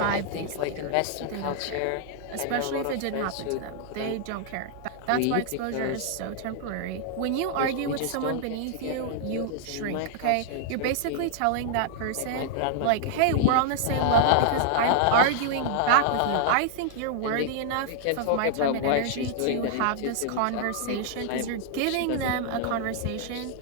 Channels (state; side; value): different; both; correlation -0.01